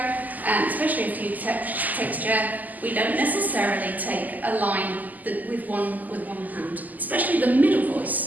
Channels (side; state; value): left; late; 0.082 ms